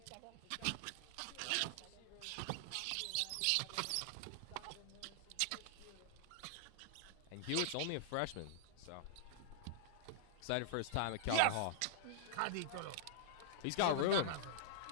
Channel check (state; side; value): different; both; correlation -0.01